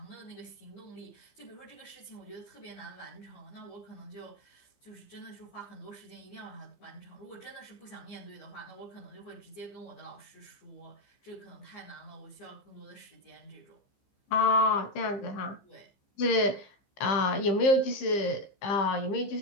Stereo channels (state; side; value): late; right; 15 ms